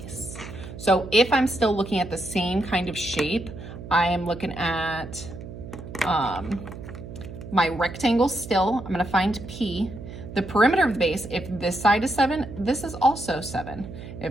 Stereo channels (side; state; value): right; noise; hum, 12 dB below the sound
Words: So if I'm still looking at the same kind of shape, I am looking at my rectangle still. I'm going to find P. The perimeter of the base, if this side is 7, this is also 7.